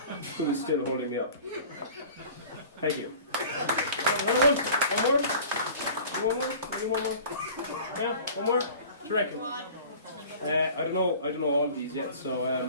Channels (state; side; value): inverted; both; correlation -0.44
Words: was still holding me up. Thank you. One more? Maybe one more? Yeah, one more? What do you reckon? I don't know all of these yet, so